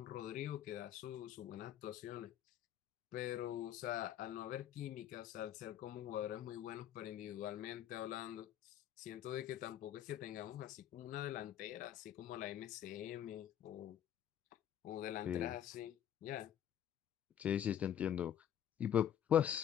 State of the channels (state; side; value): quieter; right; 10.3 dB